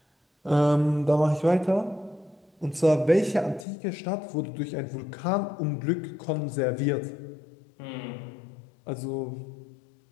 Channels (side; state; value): right; drops out; at 3.7 s